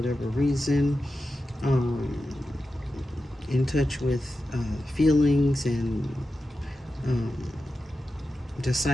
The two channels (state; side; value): normal; both; correlation 0.92